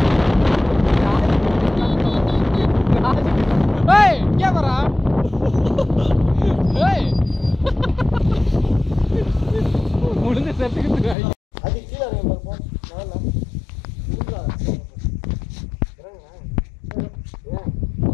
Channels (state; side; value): drops out; right; at 11.2 s